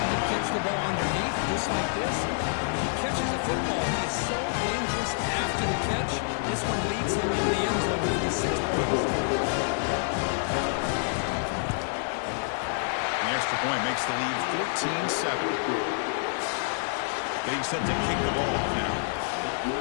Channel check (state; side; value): silent; right; 60 dB below the other